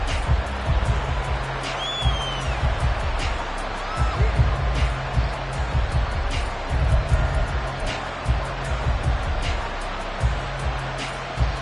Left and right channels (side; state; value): both; identical; correlation 1.00